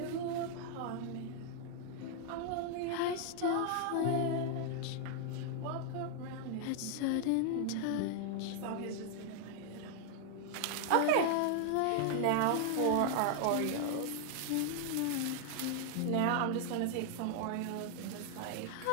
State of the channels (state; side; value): different; both; correlation 0.00